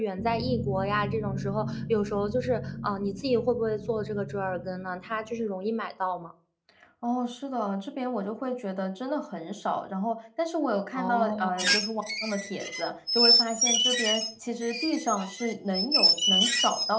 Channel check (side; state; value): both; identical; correlation 1.00